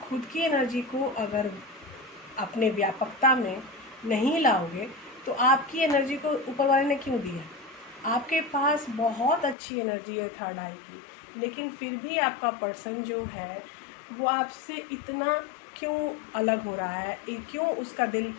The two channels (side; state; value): right; drops out; at 9.6 s